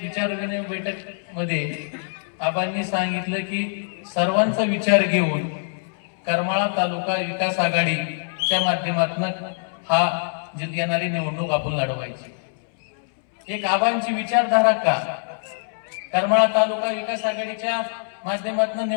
विचारविनिमय बैठक मध्ये आबांनी सांगितलं की सर्वांचा विचार घेऊन करमाळा तालुका विकास आघाडीच्या माध्यमातून हा येणारी निवडणूक आपण लढवायची। एक आबांची विचारधारा का, करमाळा तालुका विकास आघाडीच्या माध्यमातून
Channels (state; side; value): silent; right; 63 dB below the other